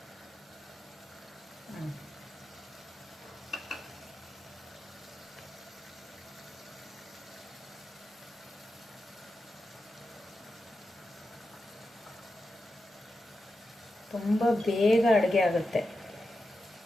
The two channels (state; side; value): normal; both; correlation 0.90